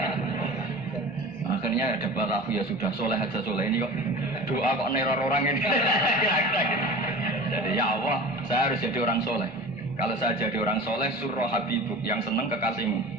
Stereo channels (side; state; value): both; normal; correlation 0.35